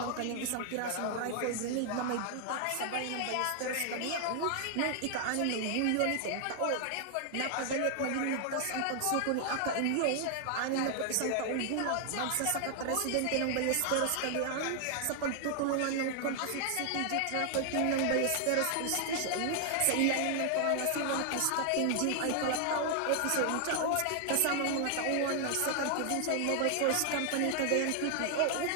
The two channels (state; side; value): different; both; correlation 0.00